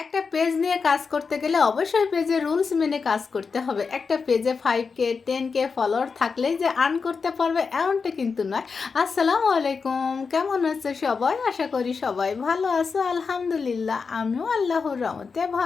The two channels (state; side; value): quieter; right; 5.1 dB